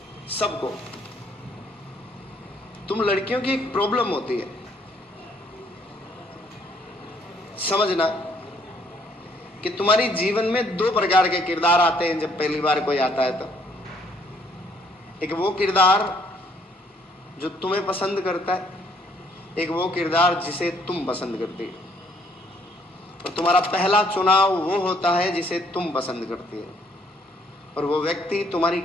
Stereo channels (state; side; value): normal; both; correlation 0.66